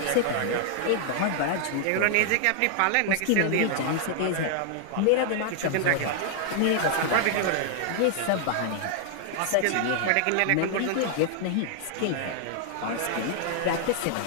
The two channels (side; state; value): both; different; correlation 0.00